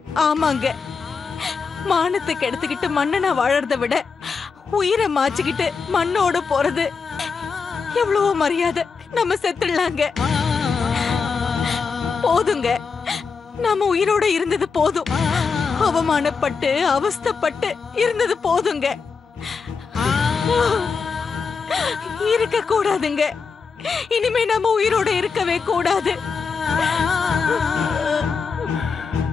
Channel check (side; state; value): right; quieter; 5.3 dB